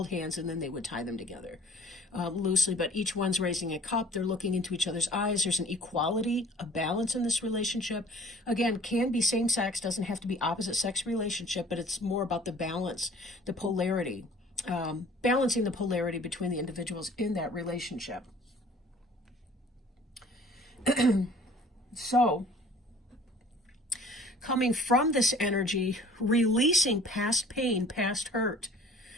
hands and then they would tie them together loosely. But each one's raising a cup. They're looking into each other's eyes. There's an equality, a balance in this relationship. Again, can be same sex, doesn't have to be opposite sex relationship, but it's more about the balance, the polarity, balancing the polarity between the individuals in that relationship. So, coming from this energy, releasing past pain, past hurt,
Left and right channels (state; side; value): normal; both; correlation 0.51